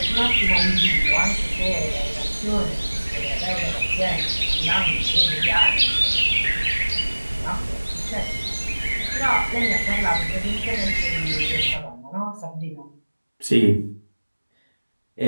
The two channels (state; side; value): inverted; both; correlation -1.00